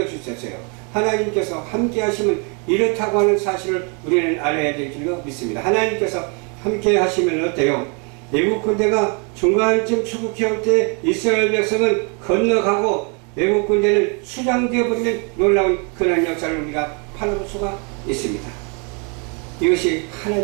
하나님께서 함께 하시면 이렇다고 하는 사실을 우리는 알아야 될 줄로 믿습니다. 하나님께서 함께 하시면 어때요? 외국 군대가 중간쯤 추국해 올 때 이스라엘 백성은 건너가고 외국 군대는 수장되어 버리는 놀라운 그런 역사를 우리가 바라볼 수가 있습니다. 이것이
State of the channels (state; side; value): quieter; left; 35.3 dB